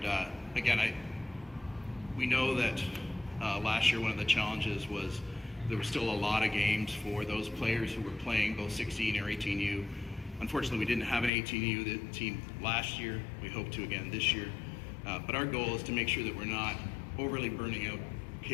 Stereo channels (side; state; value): right; drops out; at 11.3 s